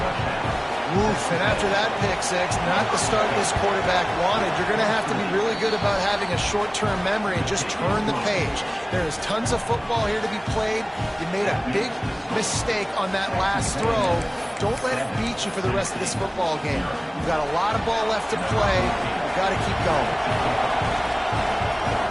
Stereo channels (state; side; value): identical; both; correlation 1.00